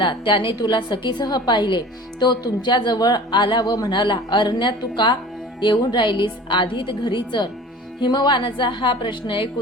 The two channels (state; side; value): normal; both; correlation 0.42